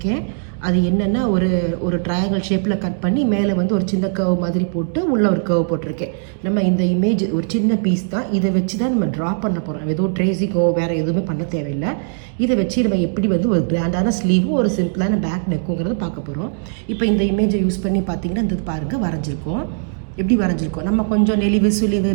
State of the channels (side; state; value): left; silent; digital silence